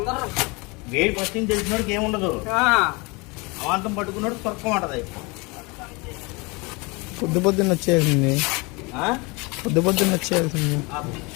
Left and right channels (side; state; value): right; quieter; 27.3 dB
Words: వేడి ఫస్ట్ నుంచి తెలిసినోడికి ఏముండదు, అవాంతం పట్టుకున్నాడు తొక్కమంటది. పొద్దున్న వచ్చేసింది, పొద్దున్న వచ్చేసింది.